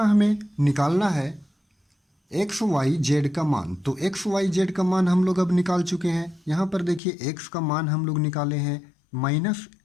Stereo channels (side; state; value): right; drops out; at 7.0 s